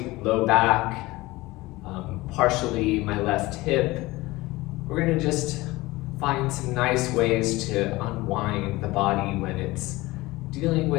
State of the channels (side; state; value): right; quieter; 20.1 dB